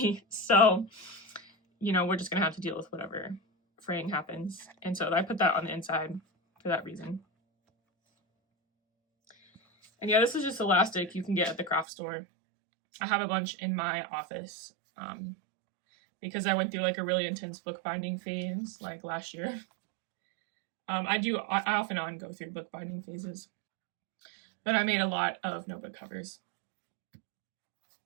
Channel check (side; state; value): left; drops out; at 11.9 s